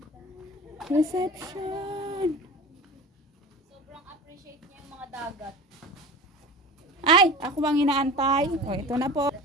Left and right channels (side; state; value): both; normal; correlation 0.34